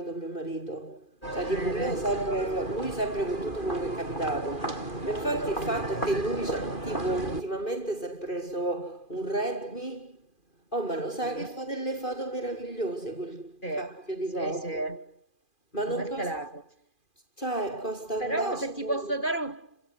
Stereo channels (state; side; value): late; right; 2.4 ms